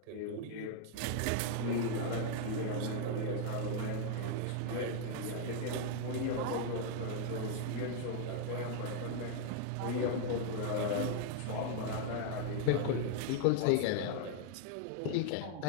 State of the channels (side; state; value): both; different; correlation 0.00